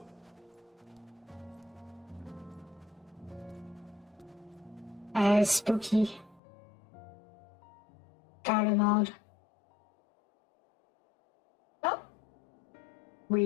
Spooky. Garden mode. Oh!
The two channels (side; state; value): right; drops out; at 6.4 s